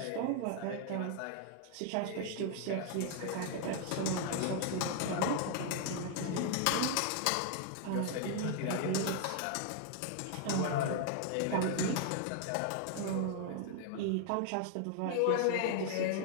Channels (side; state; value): both; different; correlation 0.00